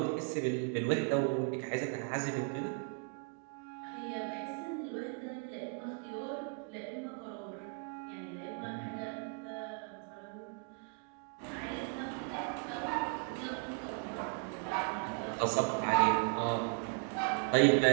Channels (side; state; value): left; quieter; 37.1 dB